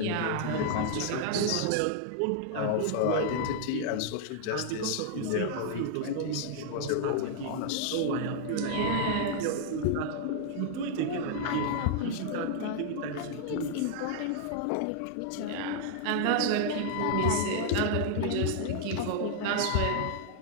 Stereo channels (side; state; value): both; different; correlation -0.01